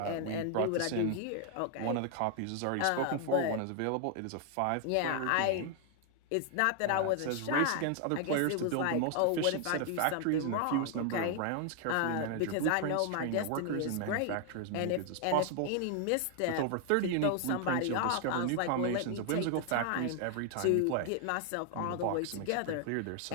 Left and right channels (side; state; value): both; different; correlation 0.00